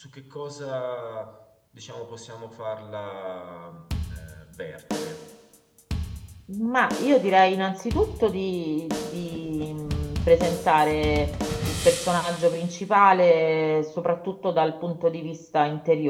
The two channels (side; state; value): both; identical; correlation 1.00